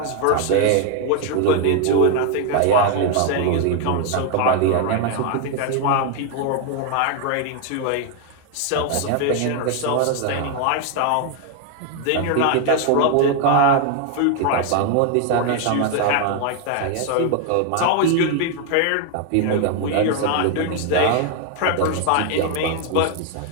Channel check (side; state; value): both; different; correlation 0.01